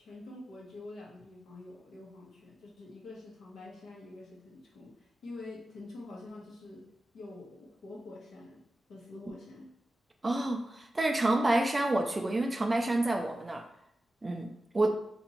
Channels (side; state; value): both; normal; correlation 0.94